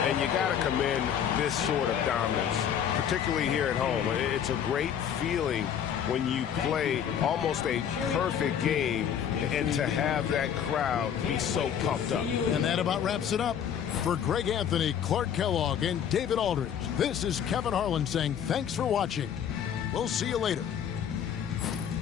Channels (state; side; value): quieter; right; 8.7 dB